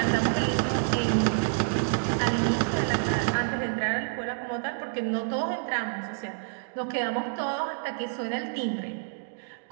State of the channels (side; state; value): left; silent; digital silence